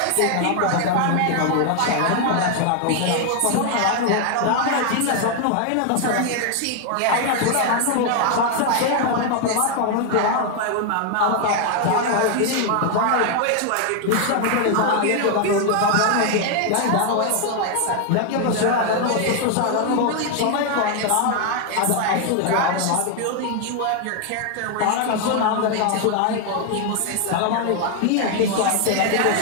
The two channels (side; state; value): both; different; correlation 0.00